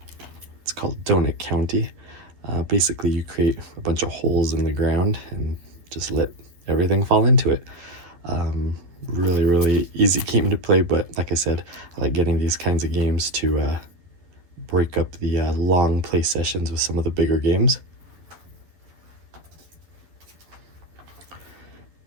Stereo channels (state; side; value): late; left; 11 ms